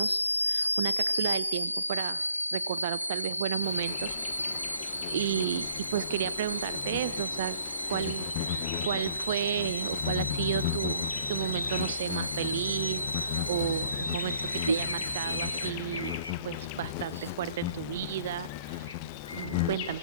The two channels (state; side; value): inverted; both; correlation -0.61